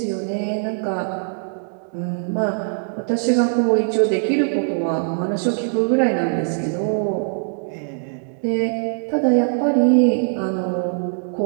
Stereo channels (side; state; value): left; silent; digital silence